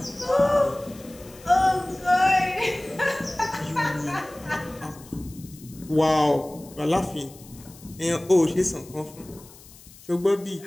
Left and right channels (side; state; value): left; noise; hiss, 21 dB below the sound